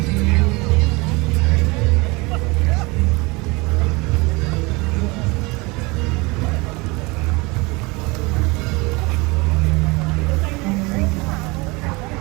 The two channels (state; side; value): quieter; left; 25.4 dB